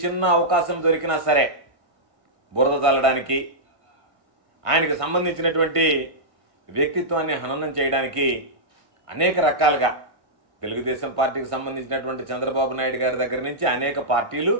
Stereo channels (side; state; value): left; late; 1.7 ms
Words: చిన్న అవకాశం దొరికినా సరే బురద జల్లడానికి, ఆయనకు సంబంధించినటువంటి వ్యక్తిత్వాన్ని హననం చేయడానికి అనేక రకాలుగా తెలుగుదేశం పార్టీకి సంబంధించినటువంటి చంద్రబాబు నాయుడు గారి దగ్గర నుంచి అనేక పార్టీలు,